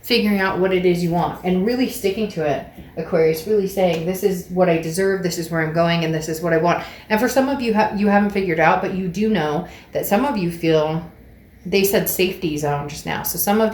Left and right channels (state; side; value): identical; both; correlation 1.00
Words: figuring out what it is you want and really sticking to it. Aquarius, really saying, this is what I deserve, this is where I'm going, and this is what I want. And for some of you, you haven't figured out, but you do know that some of you feel, they said safety zone just now. So some of